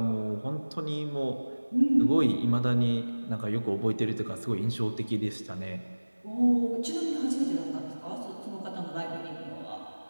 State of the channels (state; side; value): inverted; both; correlation -1.00